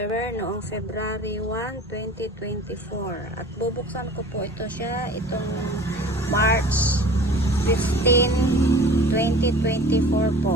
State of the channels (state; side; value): normal; both; correlation 0.43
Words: noong February 1, 2024. At bubuksan ko po ito siya itong March 15, 2024